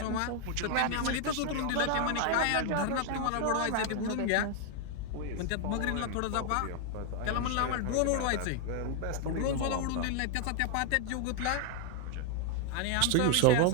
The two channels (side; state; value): both; different; correlation 0.00